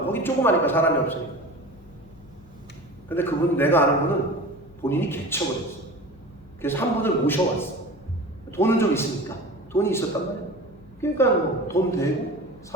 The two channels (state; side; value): noise; left; hum, 25 dB below the sound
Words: 거기 조그마니까 사람이 없으니까. 근데 그분, 내가 아는 분은 본인이 개척을 했어. 그래서 한 분을 모셔왔어. 돈은 좀 있으니까. 돈이 있었단 말이야. 그러니까 뭐 돈 대고